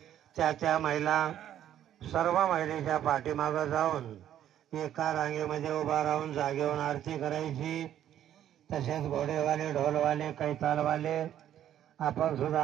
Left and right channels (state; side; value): quieter; left; 11.1 dB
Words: त्या महिला सर्व महिलेच्या पाठीमागं जाऊन एका रांगेमध्ये उभा राहून जागेवरून आरती करायची. तसेच घोडेवाले, ढोलवाले, कैतालवाले आपण